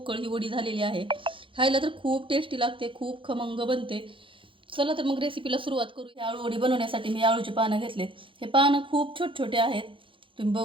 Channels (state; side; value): late; left; 0.25 ms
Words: ही वडी झालेली आहे. खायला तर खूप टेस्टी लागते, खूप खमंग बनते. चला तर मग रेसिपीला सुरुवात करू. हे आळूवडी बनवण्यासाठी मी आळूची पानं घेतलेत. हे पानं खूप छोटे छोटे आहेत. तुम्ही